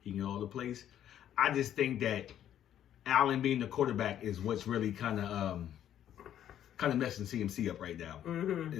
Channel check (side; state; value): right; quieter; 10.7 dB